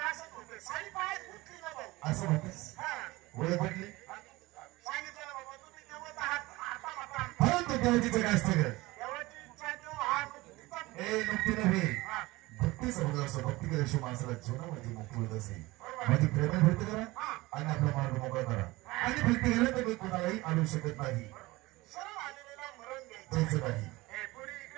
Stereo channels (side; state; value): left; quieter; 20.6 dB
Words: असं म्हणतेस ओळख पटली परंतु देवाची काय असतं ग नुकतीनं असं भक्ती केल्याशिवाय माणसाला जीवनामध्ये मुक्ती होत असे. माझी प्रेम भक्ती करा आणि आपला मार्ग मोकळा करा. आणि भक्ती केलं तर मी कोणालाही आणू शकत नाही. सरळ आलेला मरण द्यायचं नाही. हे पुढे